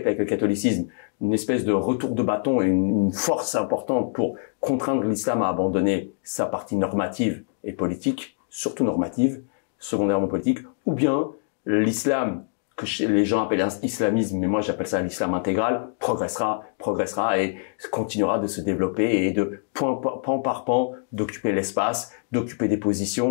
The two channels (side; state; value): right; silent; digital silence